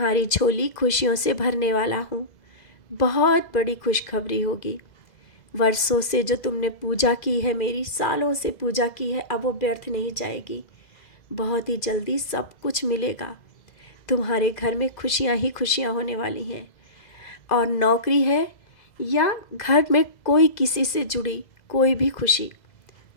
झोली खुशियों से भरने वाला हूँ। बहुत बड़ी खुशखबरी होगी। वर्षों से जो तुमने पूजा की है, मेरी सालों से पूजा की है, अब वो व्यर्थ नहीं जाएगी। बहुत ही जल्दी सब कुछ मिलेगा। तुम्हारे घर में खुशियाँ ही खुशियाँ होने वाली हैं। और नौकरी है या घर में कोई किसी से जुड़ी कोई भी खुशी,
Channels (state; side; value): late; right; 2.0 ms